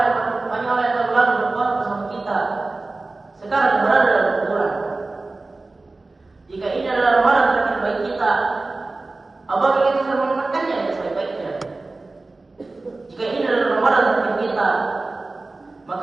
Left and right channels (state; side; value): quieter; left; 3.3 dB